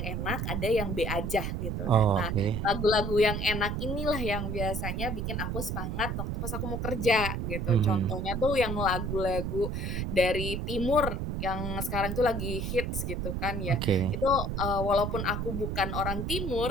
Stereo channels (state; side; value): noise; right; rumble, 2 dB below the sound